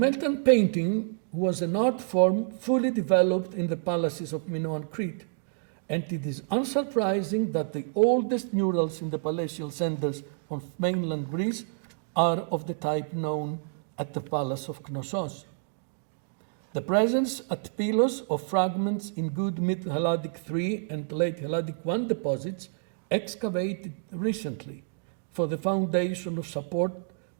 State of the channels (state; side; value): silent; left; digital silence